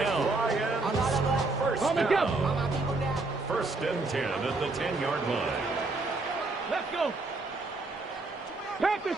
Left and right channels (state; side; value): quieter; left; 3.4 dB